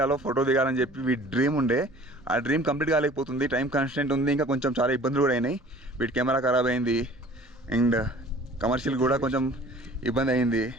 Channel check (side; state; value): both; normal; correlation 0.48